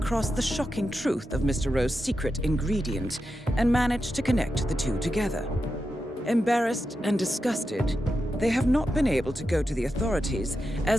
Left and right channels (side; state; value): both; normal; correlation 0.88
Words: the shocking truth of Mr. Rowe's secret ingredient and managed to connect the two together. Embarrassed and disgusted, they have not been able to go to the authorities,